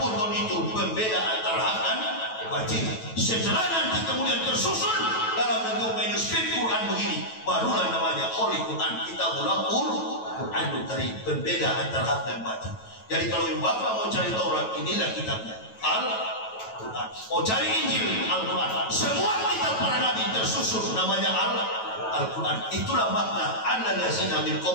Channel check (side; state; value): right; late; 9.1 ms